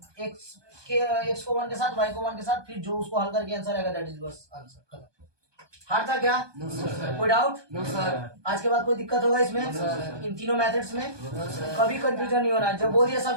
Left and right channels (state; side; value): late; left; 1.2 ms